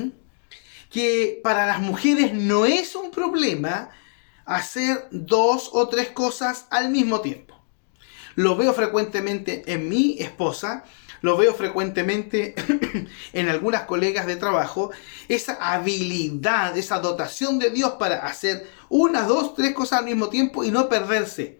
que para las mujeres no es un problema hacer dos o tres cosas al mismo tiempo. Lo veo frecuentemente en mi esposa, lo veo frecuentemente en algunas colegas de trabajo, esa habilidad, esa dotación de Dios para hacer una, dos, tres cosas al mismo tiempo y no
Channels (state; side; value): silent; right; 61 dB below the other